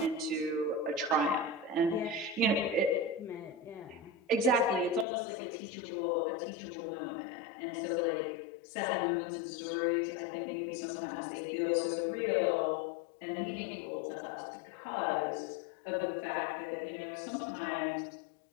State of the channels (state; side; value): drops out; right; at 5.1 s